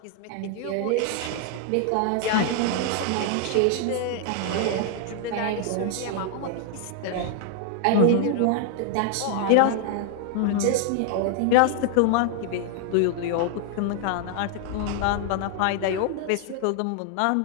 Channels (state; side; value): different; both; correlation 0.00